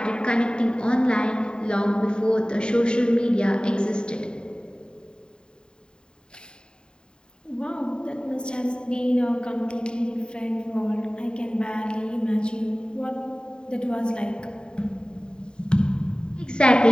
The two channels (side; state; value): right; late; 0.049 ms